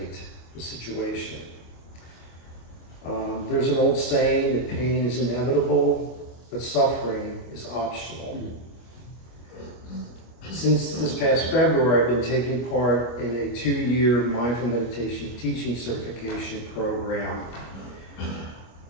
the situation. There's an old saying that pain is inevitable, but suffering is optional. Since this past February, I've been taking part in a 2-year mindful meditation teaching certification program.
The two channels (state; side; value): late; right; 25 ms